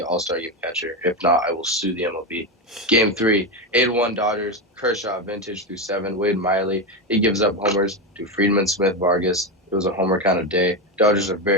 all-star game catcher. If not, I will sue the MLB. Game 3, 8-1 Dodgers. Kershaw, vintage through 7. Wade Miley, he gives up homers to Friedman, Smith, Vargas. It was a homer kind of day. Dodgers are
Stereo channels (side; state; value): both; normal; correlation 0.14